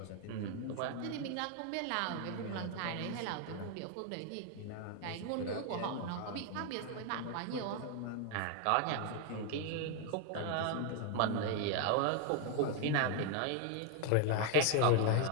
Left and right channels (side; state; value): both; different; correlation 0.00